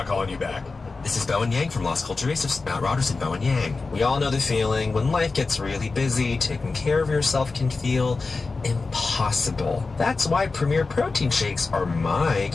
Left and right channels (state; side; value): quieter; right; 4.0 dB